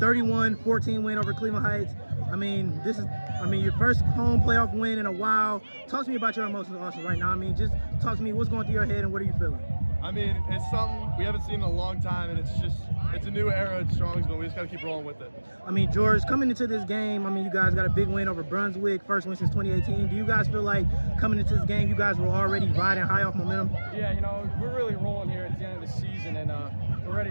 win over Cleveland Heights. I mean, this is, your first home playoff win in a while. Talk to me about your emotions, Austin, right now. I mean, just talk to me, what's going through your head and what are you feeling? I mean, it's something we haven't seen in a long time, and it's a new era at Strongsville. We just got to keep rolling with it. I mean, George, coming into this game, I mean, you guys got a big win over Brunswick, first win since 2018. Do you guys feel like coming into this game, you guys were already riding high off momentum? Yeah, you know, we're really rolling here at the end of the season, and we're ready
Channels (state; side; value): inverted; both; correlation -1.00